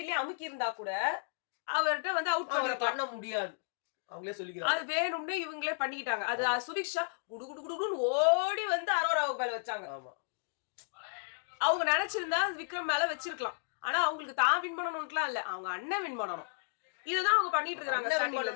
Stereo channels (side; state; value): right; silent; digital silence